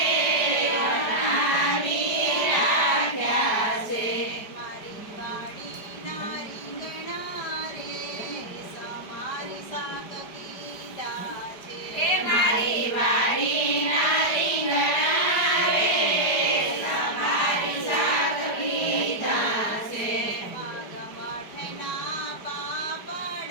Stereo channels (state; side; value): late; right; 4.9 ms